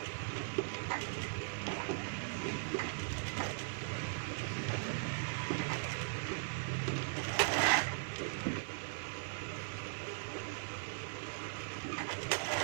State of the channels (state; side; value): silent; left; 52 dB below the other